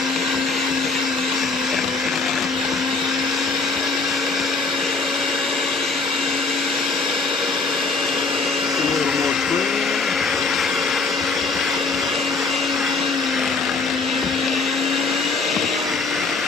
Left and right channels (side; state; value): right; quieter; 4.1 dB